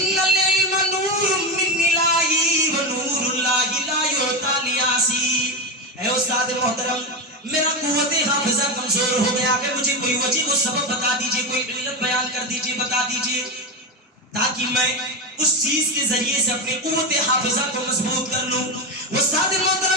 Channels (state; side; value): normal; both; correlation 0.14